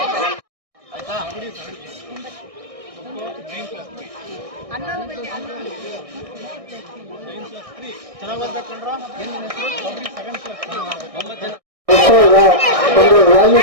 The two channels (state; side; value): late; left; 1.6 ms